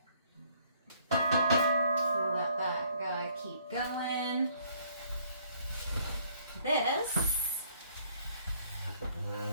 We'll let that guy keep going. This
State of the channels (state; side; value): inverted; both; correlation -0.63